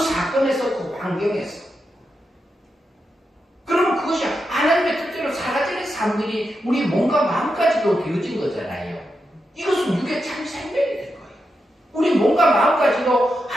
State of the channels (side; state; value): both; normal; correlation 0.87